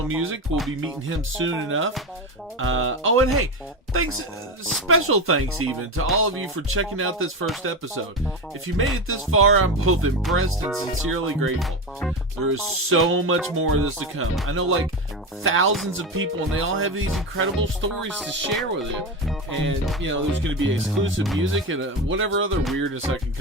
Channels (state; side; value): normal; both; correlation 0.18